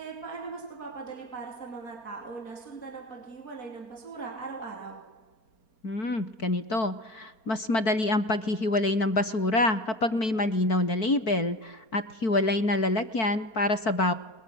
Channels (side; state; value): right; late; 4.5 ms